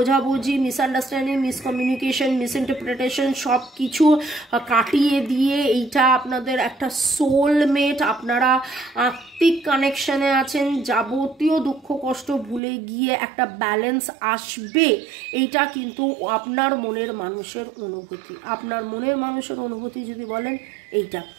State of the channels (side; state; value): left; drops out; at 12.6 s